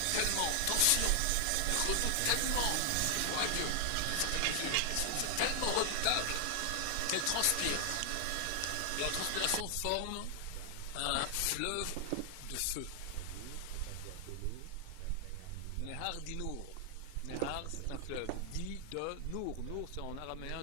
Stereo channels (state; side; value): different; both; correlation 0.00